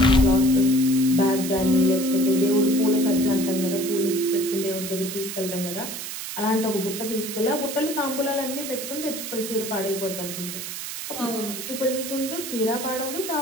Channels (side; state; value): right; noise; hiss, 7 dB below the sound